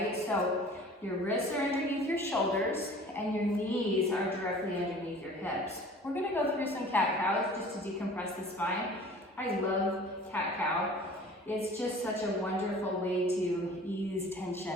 So your wrists are underneath your shoulders and your knees are directly underneath your hips. We're going to go through some cat-cows just to decompress the spine. I love cat-cow. It's just such a wonderful way to ease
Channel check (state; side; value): normal; both; correlation 0.46